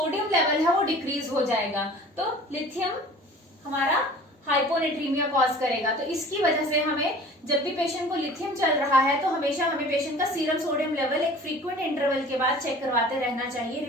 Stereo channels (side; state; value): both; normal; correlation 0.45